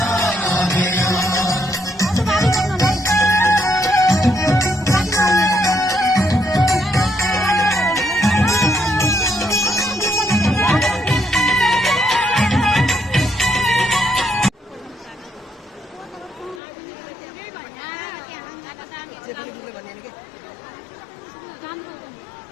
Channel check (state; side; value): drops out; right; at 16.6 s